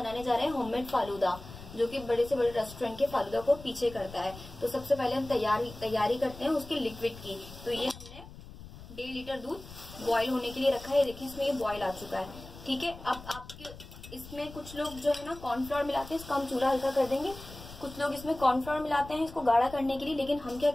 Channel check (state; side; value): noise; left; rumble, 16 dB below the sound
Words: जा रहे हैं होममेड फालूदा, जो कि बड़े से बड़े रेस्टोरेंट के फालूदा को पीछे करता है। तो सबसे पहले हम तैयारी करते हैं उसके लिक्विड की। तो ये हमने 1.5 लीटर दूध बॉईल होने के लिए रखा है। देखिए इसमें ये बॉईल आ चुका है। ठीक है, अब आपके इसमें कुछ लोग जो है ना कॉर्नफ्लोर मिलाते हैं, इसका हम चूल्हा हल्का कर देंगे। कुछ लोग इसमें कॉर्नफ्लोर मिलाते हैं इसको गाढ़ा करने के लिए, लेकिन हम क्या